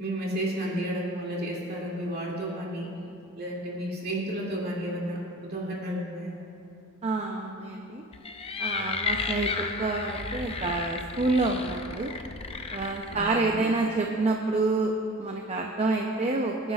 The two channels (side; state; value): both; normal; correlation 0.40